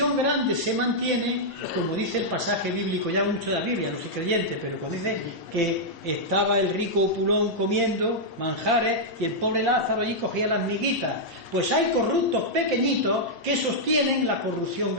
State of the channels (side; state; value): both; normal; correlation -0.07